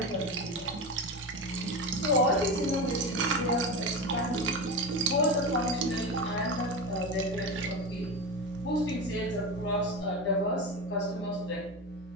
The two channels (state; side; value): normal; both; correlation 0.21